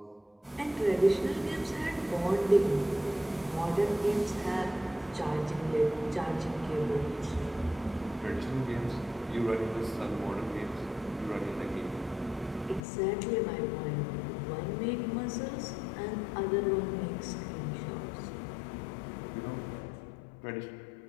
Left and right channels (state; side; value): drops out; right; at 12.8 s